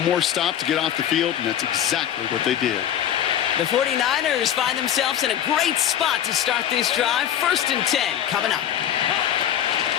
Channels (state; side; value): quieter; right; 10.2 dB